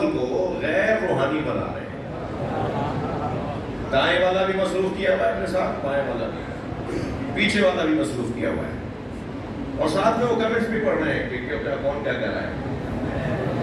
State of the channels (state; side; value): identical; both; correlation 1.00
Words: کو غیر روحانی بنا رہے ہیں. دائیں والا بھی مصروف کیا ہوا ہے اپنے ساتھ، بائیں والا بھی، پیچھے والا بھی مصروف کیا ہوا ہے، اور ساتھ میں وہ کمنٹس بھی پڑھ رہے ہیں کہ کون کیا کہہ رہا ہے.